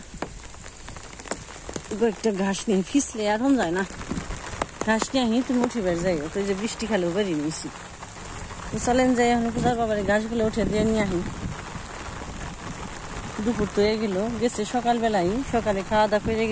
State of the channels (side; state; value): both; identical; correlation 1.00